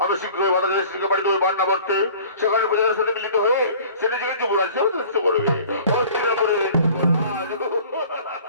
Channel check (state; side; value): inverted; both; correlation -0.47